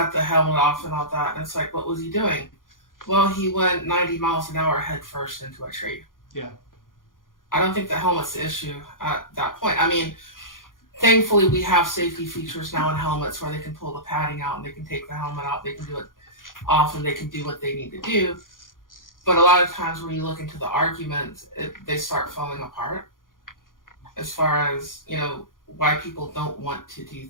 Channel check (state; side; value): late; right; 0.90 ms